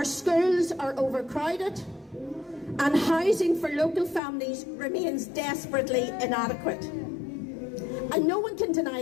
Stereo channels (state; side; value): drops out; right; at 4.2 s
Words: schools are overcrowded. And housing for local families remains desperately inadequate. And no one can